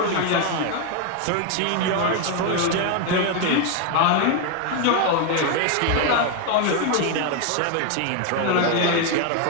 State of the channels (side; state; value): both; different; correlation 0.01